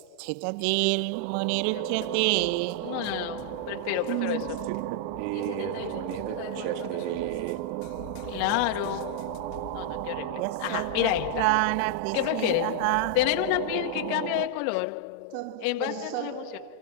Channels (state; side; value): different; both; correlation -0.01